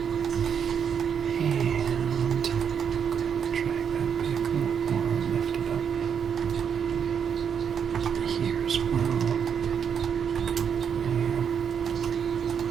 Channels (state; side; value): quieter; left; 7.5 dB